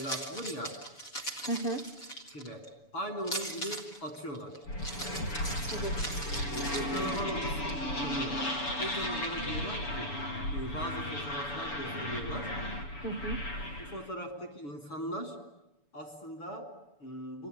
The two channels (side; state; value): right; late; 7.0 ms